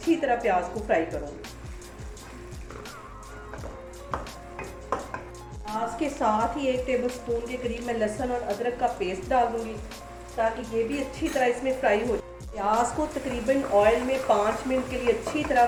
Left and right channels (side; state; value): both; identical; correlation 1.00